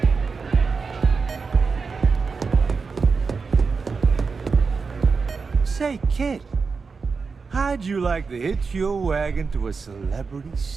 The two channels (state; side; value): quieter; left; 4.9 dB